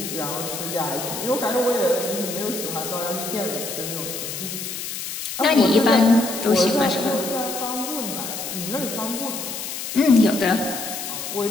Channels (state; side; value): noise; left; hiss, 6 dB below the sound